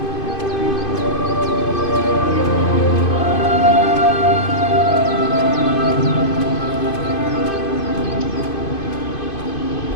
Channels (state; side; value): late; right; 2.5 ms